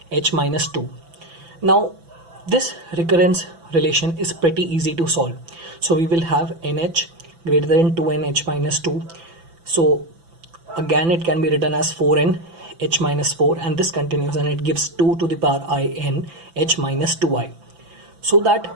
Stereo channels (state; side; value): late; left; 6.0 ms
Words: h minus 2. Now this recurrence relation is pretty easy to solve. So we will have nh greater than 2n h minus 2. So again it can be written as 4n h minus 4, and this continues and it gives 2 to the power I n h minus 2i. So that